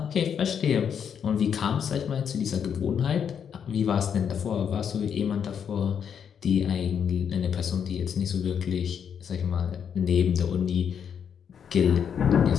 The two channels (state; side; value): quieter; right; 7.8 dB